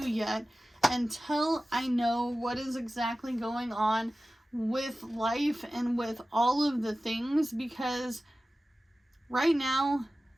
yet until I know what is exactly going on with life and with all of the things, because right now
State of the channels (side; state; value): both; normal; correlation 0.96